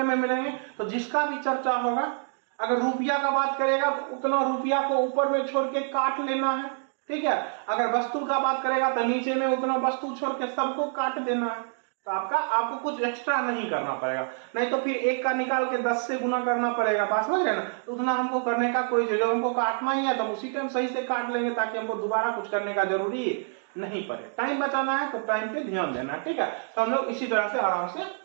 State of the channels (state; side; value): silent; left; 58 dB below the other